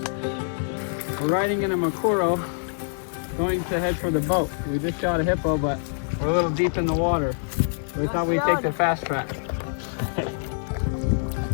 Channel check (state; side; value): silent; right; digital silence